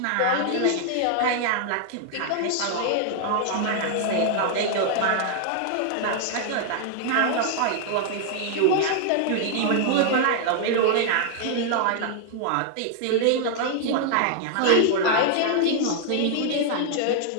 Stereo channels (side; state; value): both; different; correlation 0.00